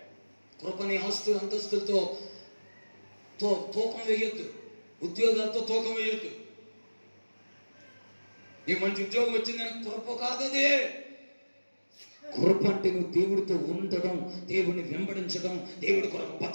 కృపని ఆస్తులు అంతస్తులతో తూకం వేయొద్దు, ఉద్యోగాలతో తూకం వేయొద్దు. నీకు మంచి ఉద్యోగం వచ్చిందని కృప కాదదే. కృప అంటే నువ్వు దేవుడితో ఉండడం, దేవుడిని వెంబడించడం, దేవుడి కొరకు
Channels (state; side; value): inverted; both; correlation -1.00